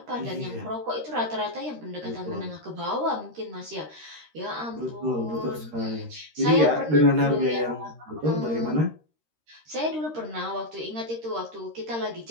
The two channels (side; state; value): left; late; 13 ms